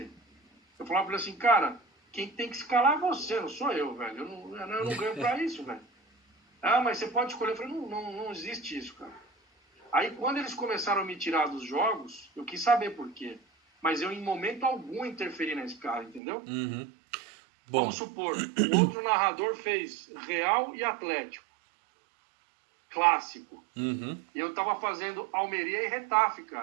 Eu falava pra ele assim, cara, quem tem que escalar é você, não sou eu, velho. Eu não ganho pra isso, velho. Ah, mas você pode escolher. Eu falei, não existe isso, cara. Aí quando eles começaram a me tirar dos jogos, eu quis saber por quê. Mas eu em momento algum interferi na escala, entendeu? Uhum. Bom. Vamos supor, o outro narrador fez Real e Atlético. Clássico. Uhum. E eu tava fazendo Almeria e Retafe,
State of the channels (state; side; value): drops out; left; at 16.2 s